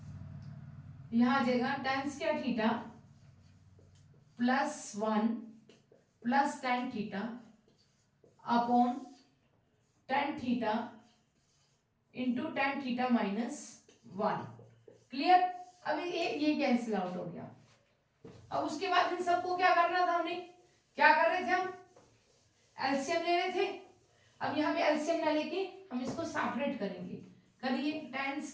यहाँ आ जाएगा tan square theta +1 plus tan theta upon tan theta into tan theta -1। Clear? अभी ये कैंसिल आउट हो गया। अब उसके बाद इन सबको क्या करना था? हमने क्या कर रहे थे? हम एलसीएम ले रहे थे। अब यहाँ पे एलसीएम ना लेके हम इसको सेपरेट करेंगे। करिए, tan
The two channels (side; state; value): both; identical; correlation 1.00